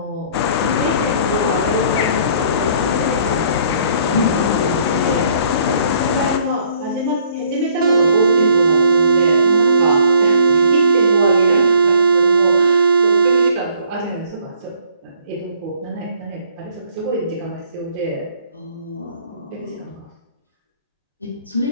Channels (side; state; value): both; inverted; correlation -0.61